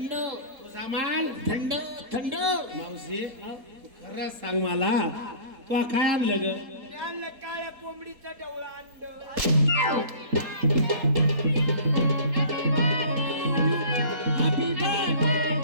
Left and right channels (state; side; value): late; left; 4.2 ms